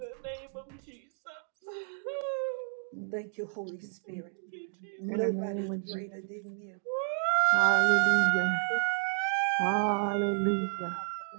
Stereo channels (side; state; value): left; silent; digital silence